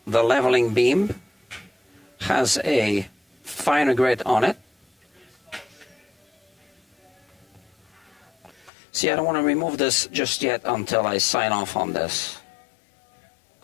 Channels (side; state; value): right; drops out; at 8.7 s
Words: the leveling beam has a finer grid on it. See, I don't want to remove this just yet until I sign off on this.